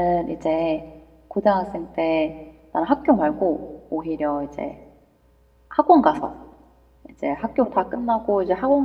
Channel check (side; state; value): both; identical; correlation 1.00